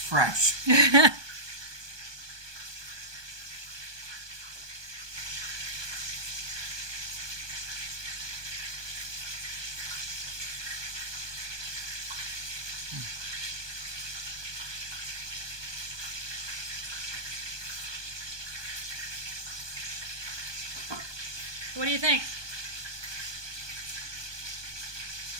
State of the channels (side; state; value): left; late; 1.2 ms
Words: What do you think?